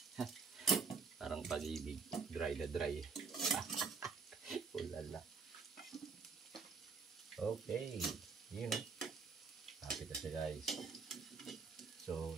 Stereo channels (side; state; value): left; quieter; 5.2 dB